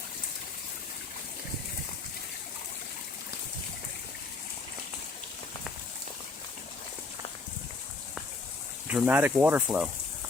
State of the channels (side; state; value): right; quieter; 3.7 dB